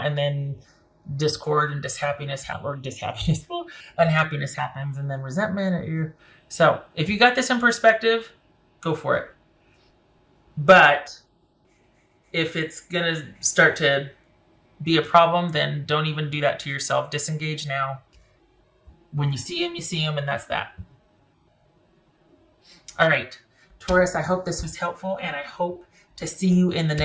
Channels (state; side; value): identical; both; correlation 1.00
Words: then discord and unhappiness happens, and then resentment. So if you got this in perspective, go for it. But if it's going to start to be a problem, then don't even do that to yourself. Disengage now. When you see him, and that's that. All right, Taurus, I hope this was helpful, and I hope to see you in the